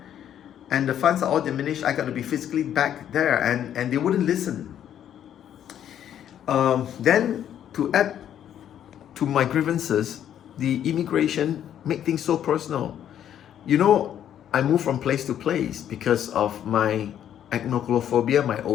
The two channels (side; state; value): right; quieter; 10.2 dB